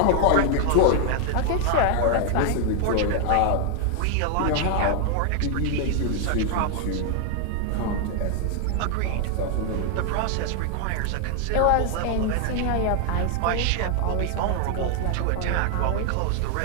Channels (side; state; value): both; different; correlation 0.00